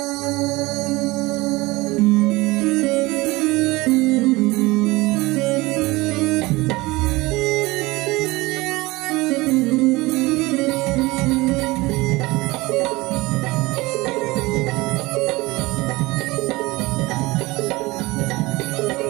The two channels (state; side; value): quieter; left; 21.4 dB